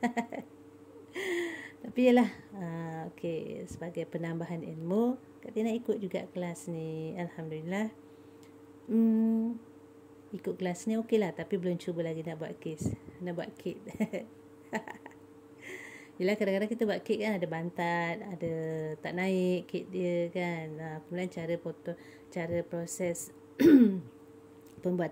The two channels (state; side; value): identical; both; correlation 1.00